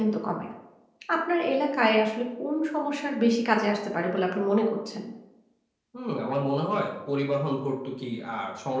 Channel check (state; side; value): identical; both; correlation 1.00